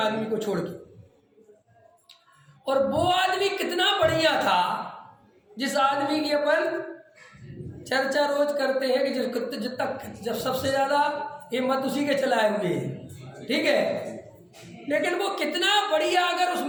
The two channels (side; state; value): both; identical; correlation 1.00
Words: को छोड़ के। और वो आदमी कितना बढ़िया था जिस आदमी की अपन चर्चा रोज करते हैं कि जब सबसे ज्यादा हिम्मत उसी के चलाए हुए हैं। ठीक है, लेकिन वो कितना बढ़िया, अगर उस